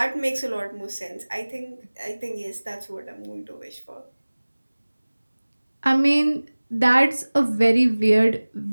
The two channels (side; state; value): both; inverted; correlation -1.00